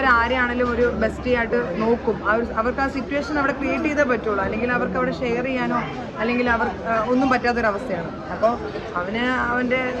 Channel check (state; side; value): identical; both; correlation 1.00